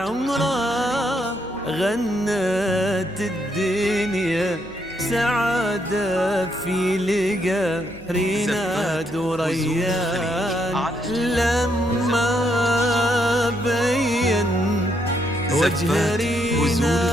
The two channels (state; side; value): normal; both; correlation 0.76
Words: غنت الدنيا سعادة في لقى ريناد وريان. لما بين وجه